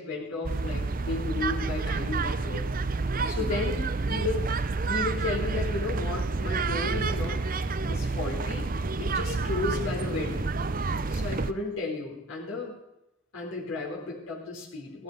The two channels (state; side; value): normal; both; correlation 0.51